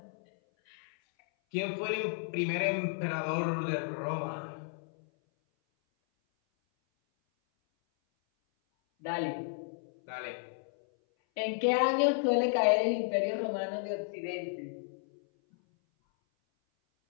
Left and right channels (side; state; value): right; silent; 56 dB below the other